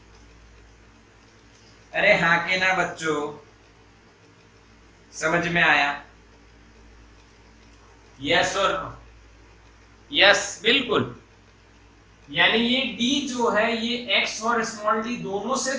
अरे हाँ के ना बच्चों, समझ में आया? यस और नो? यस बिल्कुल। यानी ये d जो है ये x और स्मॉल d दोनों से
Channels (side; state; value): both; identical; correlation 1.00